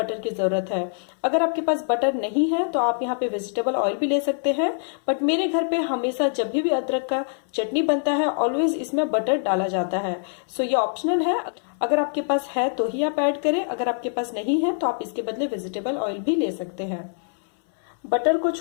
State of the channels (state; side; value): silent; right; 62 dB below the other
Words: की जरूरत है। अगर आपके पास बटर नहीं है तो आप यहाँ पे वेजिटेबल ऑयल भी ले सकते हैं, बट मेरे घर पे हमेशा जब भी अदरक का चटनी बनता है ऑलवेज इसमें बटर डाला जाता है। सो ये ऑप्शनल है, अगर आपके पास है तो ही आप ऐड करें, अगर आपके पास नहीं है तो आप इसके बदले वेजिटेबल ऑयल भी ले सकते हैं। बटर को